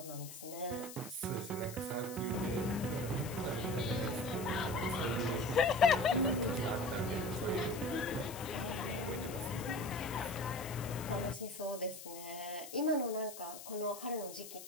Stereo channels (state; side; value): noise; left; hiss, 12 dB below the sound